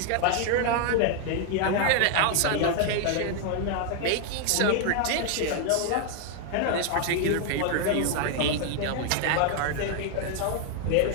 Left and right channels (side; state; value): both; different; correlation 0.00